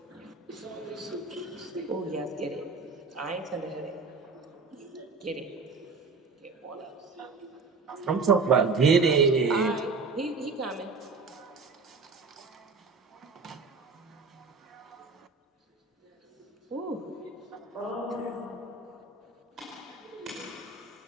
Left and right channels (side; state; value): left; quieter; 4.3 dB